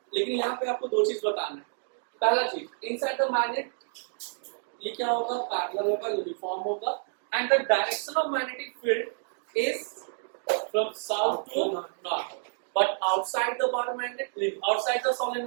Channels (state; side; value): silent; left; digital silence